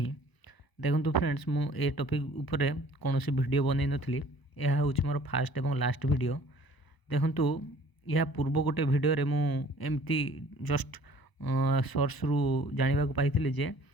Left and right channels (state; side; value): late; right; 1.0 ms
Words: देखो फ्रेंड्स मु ए टॉपिक ऊपर कौन सी वीडियो बनई नथली यह हूँ मोर फास्ट एवं लास्ट वीडियो देखंतु यह पूर्व गोटे वीडियो रे मु एमती जस्ट सोर्स रु जानिबा को पाइथिले